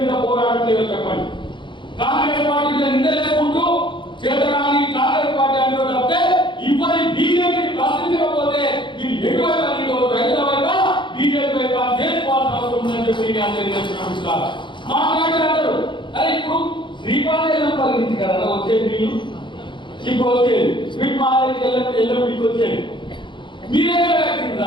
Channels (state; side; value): late; right; 0.23 ms